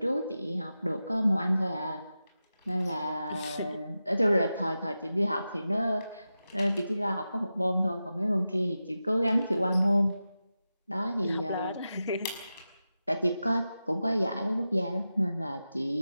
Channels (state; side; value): inverted; both; correlation -0.92